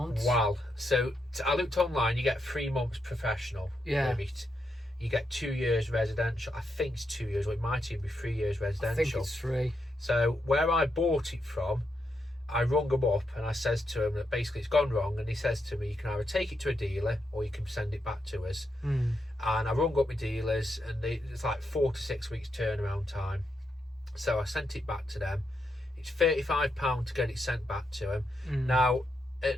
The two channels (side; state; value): both; normal; correlation 0.83